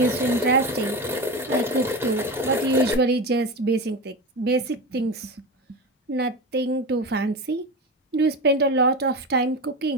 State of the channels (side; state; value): both; normal; correlation 0.23